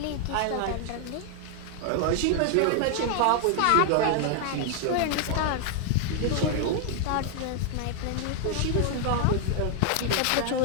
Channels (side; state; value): both; different; correlation 0.00